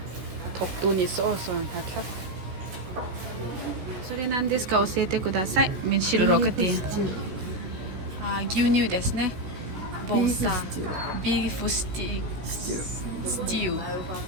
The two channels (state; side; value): late; left; 16 ms